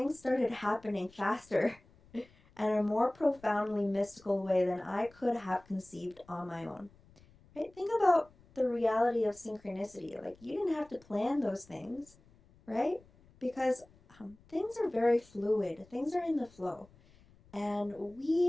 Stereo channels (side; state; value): left; noise; rumble, 27 dB below the sound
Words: started happening faster and in a more profoundly mystical way than I could have conceived on my own. Right? Think about the reality of synchronicity. Like, you didn't have to plan those things, right? Because things are very fluid. Things are in the flow. And